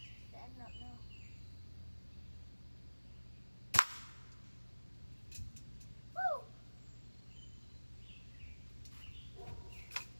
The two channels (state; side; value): inverted; both; correlation -1.00